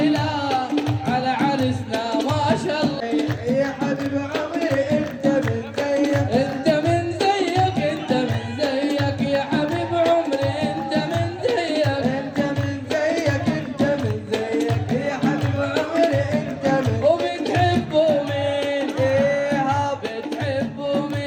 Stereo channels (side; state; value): both; identical; correlation 1.00